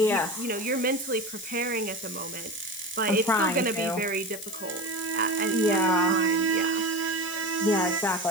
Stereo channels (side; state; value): left; noise; hiss, 12 dB below the sound